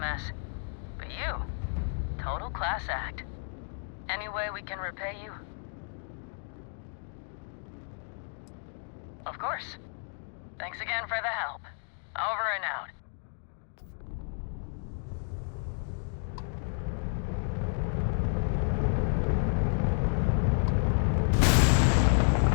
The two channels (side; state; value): right; silent; 57 dB below the other